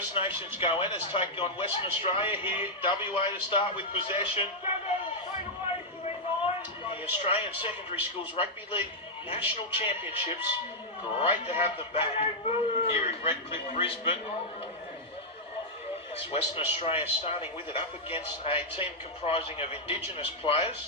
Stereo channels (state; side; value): normal; both; correlation -0.05